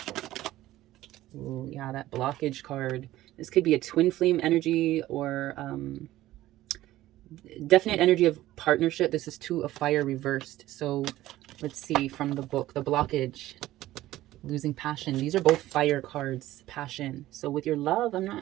Oh, yeah, that blockage card. This could be a twin flame energy or definite energy of partnership. This is Two of Fire reversed. So let's see from the book, the blockage, losing passion. These are both fire cards, passion. So with your love,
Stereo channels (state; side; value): quieter; left; 15.4 dB